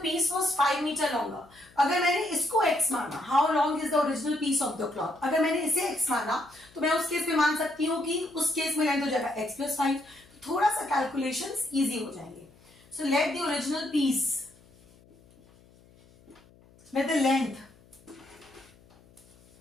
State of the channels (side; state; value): left; noise; hum, 27 dB below the sound